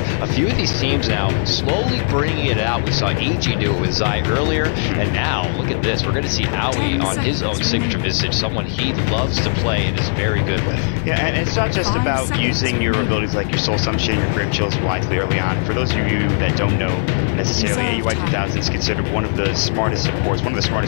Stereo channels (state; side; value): silent; right; digital silence